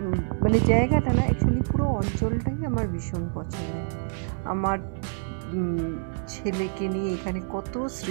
মানে জায়গাটা না, অ্যাকচুয়ালি পুরো অঞ্চলটাই আমার ভীষণ পছন্দের। আমার ছেলেকে নিয়ে এখানে কত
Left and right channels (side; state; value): left; silent; 60 dB below the other